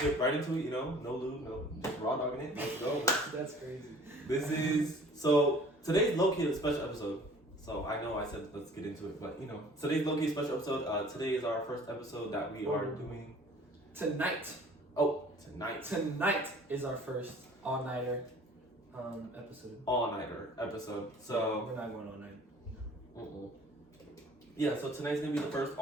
get right into it. You know, no lube, no, just raw dogging it. Let's go. That's crazy. Today's low-key a special episode. So I know I said let's get into it, but you know, today's low-key special episode. Today is our first episode that we are doing tonight. Tonight. Tonight is our first all-nighter episode. All-nighter episode. So we're not going all night. Yeah, so tonight's gonna be the first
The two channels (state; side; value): normal; both; correlation 0.50